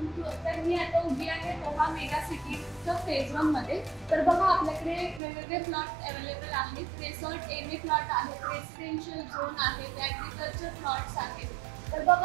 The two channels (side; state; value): left; drops out; at 5.2 s